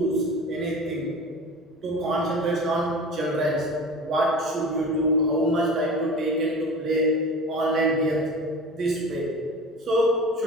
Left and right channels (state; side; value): normal; both; correlation 0.35